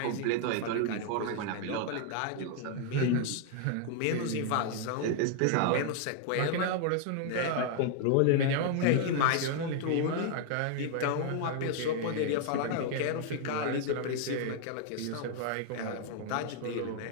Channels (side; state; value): both; different; correlation 0.00